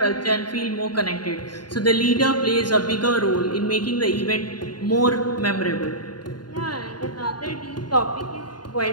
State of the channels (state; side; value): late; right; 0.70 ms